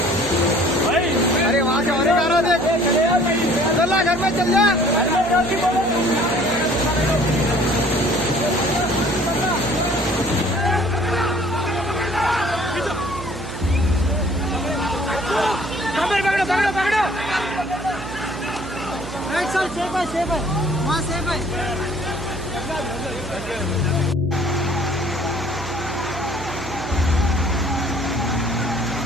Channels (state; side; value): noise; right; hum, 11 dB below the sound